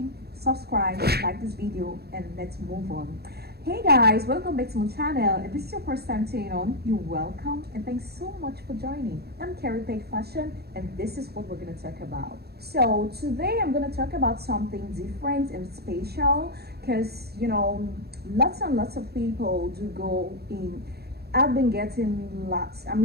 subscribe, like this video, and let's move on. Hey guys, welcome back to my channel. If this is your first time tuning on, you're welcome and thanks so much for joining. I'm Carrie Page Fashion and this is what we're going to talk about. So today I'm going to talk about something different and special because lots and lots of people do go in. I've been getting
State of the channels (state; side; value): late; left; 0.46 ms